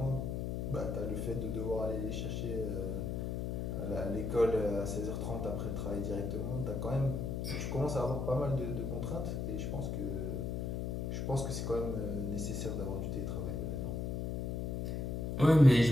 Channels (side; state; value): left; noise; hum, 2 dB below the sound